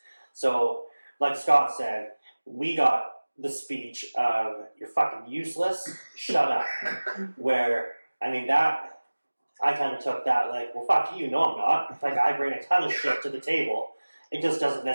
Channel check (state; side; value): inverted; both; correlation -1.00